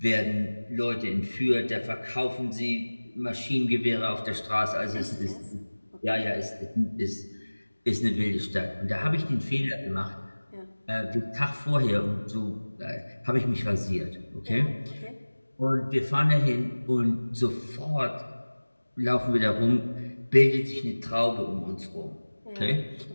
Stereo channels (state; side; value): inverted; both; correlation -1.00